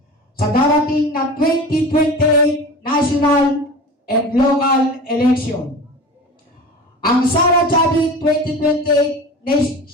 sa darating na 2028 national and local election. Ang Sara Chavit 2028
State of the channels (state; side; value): normal; both; correlation 0.34